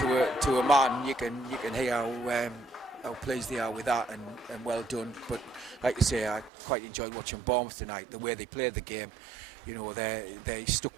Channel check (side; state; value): left; drops out; at 6.5 s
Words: a man, you can hear how pleased they are with that, and well done. But like you say, I quite enjoyed watching Bournemouth tonight. The way they played the game, they